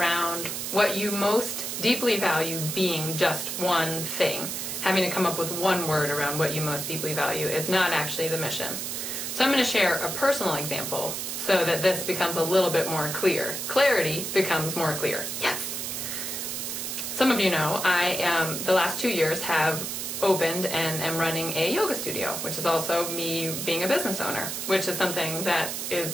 what you most deeply value being just one thing. Having to come up with one word around what you most deeply value is not actually the mission. So I'm going to share a personal example so that this becomes a little bit more clear. Clarity becomes more clear. Yes! Some of you know the last 2 years have opened and am running a yoga studio, which is also me being a business owner, which is something that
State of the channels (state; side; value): noise; right; hiss, 4 dB below the sound